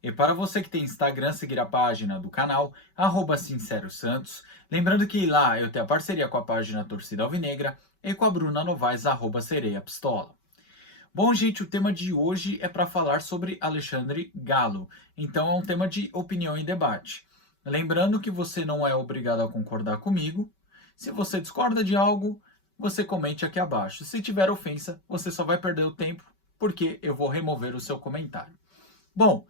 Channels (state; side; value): late; right; 5.2 ms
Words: E para você que tem Instagram, seguir a página do canal, Sincero Santos. Lembrando que lá eu tenho a parceria com a página Torcida Alvinegra e com a Bruna Novaes, Sereia Pistola. Bom, gente, o tema de hoje é para falar sobre Alexandre Galo. Então é um tema de opinião e debate. Lembrando que você não é obrigado a concordar comigo. Se você discorda de algo, você comente aqui abaixo. Se tiver ofensa, você só vai perder o tempo, porque eu vou remover o seu comentário. Bom,